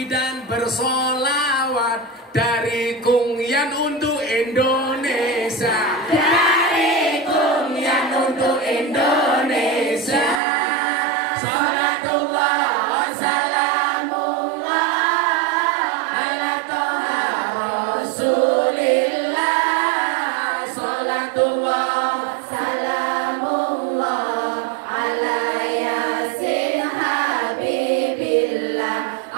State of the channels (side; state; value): left; drops out; at 10.4 s